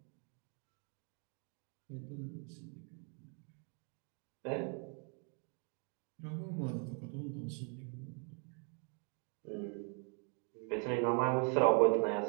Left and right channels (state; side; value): quieter; left; 39.8 dB